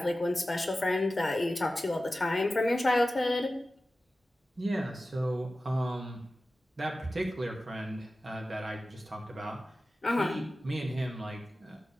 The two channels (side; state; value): both; normal; correlation 0.95